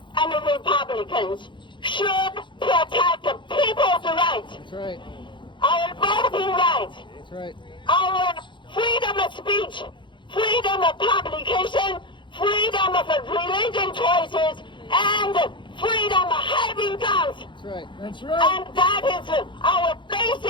and Republicans should protect people's rights. That's right. Our voting rights. That's right. Our freedom of speech, freedom of publication, freedom of religion choices, and freedom of having guns. That's right. That's right. And that is our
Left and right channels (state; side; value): late; right; 0.23 ms